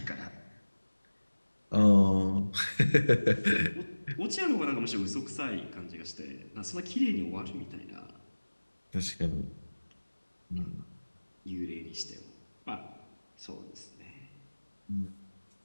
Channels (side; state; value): both; inverted; correlation -1.00